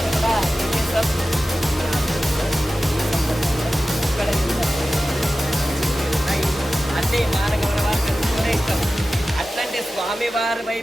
కూడా ఏం చేస్తాం, ఇక్కడ అంటే మానగమన వారు ఇస్తాం. అట్లాంటి స్వామివారి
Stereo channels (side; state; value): both; normal; correlation 0.94